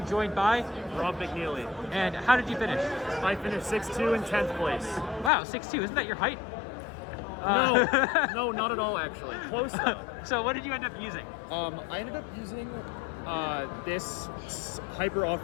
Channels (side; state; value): right; drops out; at 5.3 s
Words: joined by Rob McNeely. And how did you finish? I finished 6-2 in 10th place. Wow, 6'2". Isn't that your height? No, not at all actually. Close though. So what did you end up using? I ended up using this hyper